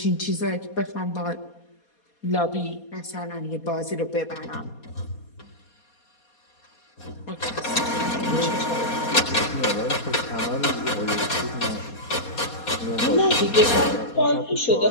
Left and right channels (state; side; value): late; right; 4.2 ms